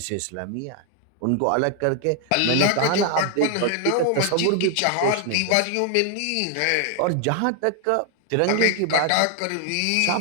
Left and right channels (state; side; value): different; both; correlation 0.00